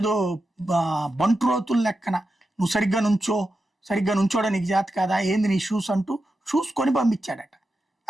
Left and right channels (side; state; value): both; normal; correlation 0.89